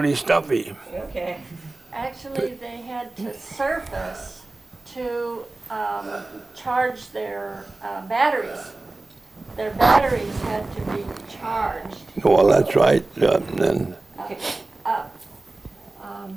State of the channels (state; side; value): quieter; left; 3.0 dB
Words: stuffy. Okay. Actually, they had to surface to charge their batteries. Their batteries had to be charged Well, that's right. Then up.